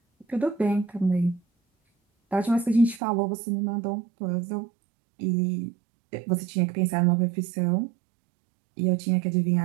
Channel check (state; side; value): drops out; left; at 3.0 s